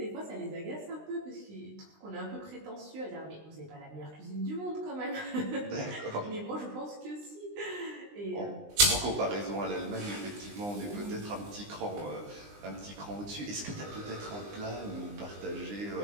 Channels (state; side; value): late; left; 20 ms